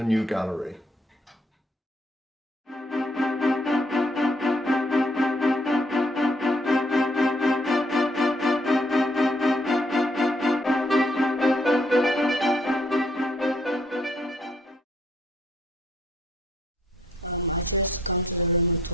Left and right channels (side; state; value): both; normal; correlation 0.69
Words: new gallery. I chose to come to the Room of